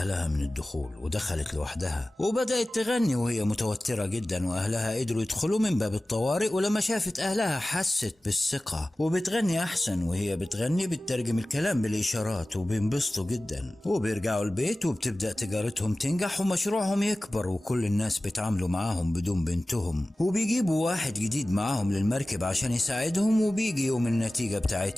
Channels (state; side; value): normal; both; correlation 0.97